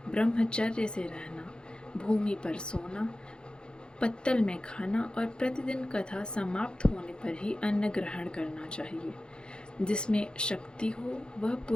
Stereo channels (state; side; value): late; right; 0.050 ms